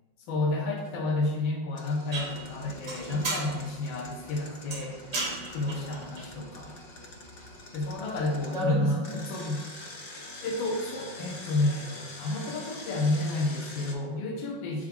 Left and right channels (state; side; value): late; right; 5.6 ms